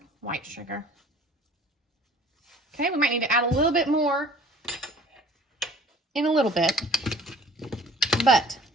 white sugar. Okay, we might need to add a little bit more in a little bit, but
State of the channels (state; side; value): normal; both; correlation 0.49